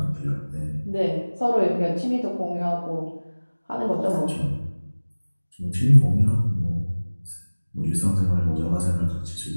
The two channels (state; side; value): inverted; both; correlation -1.00